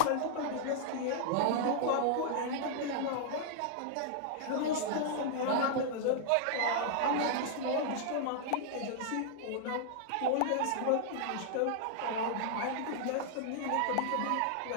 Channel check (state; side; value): different; both; correlation -0.01